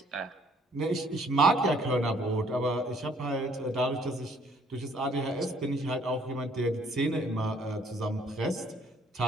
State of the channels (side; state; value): both; normal; correlation 0.62